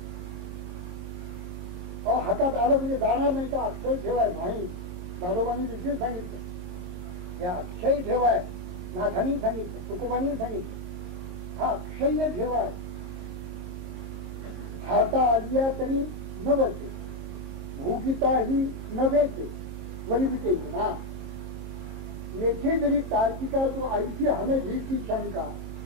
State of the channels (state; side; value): late; left; 22 ms